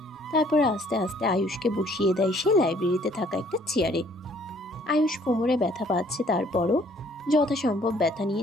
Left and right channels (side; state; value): both; normal; correlation 0.60